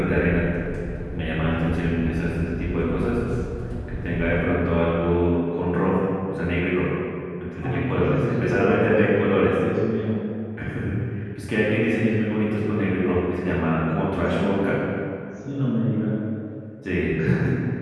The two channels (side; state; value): both; identical; correlation 1.00